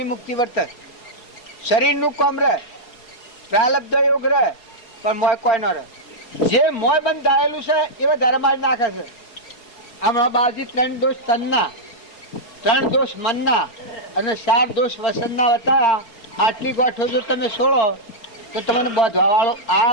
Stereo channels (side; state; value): right; late; 4.7 ms